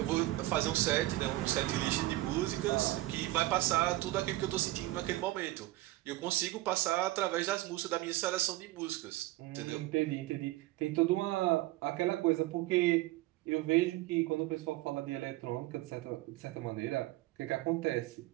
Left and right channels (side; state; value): left; quieter; 18.0 dB